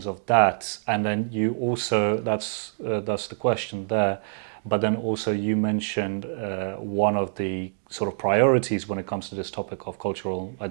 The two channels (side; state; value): left; silent; digital silence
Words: of that? And then you also, that's the question there, but then also you mentioned one of the sort of priorities when it comes to this topic of cultural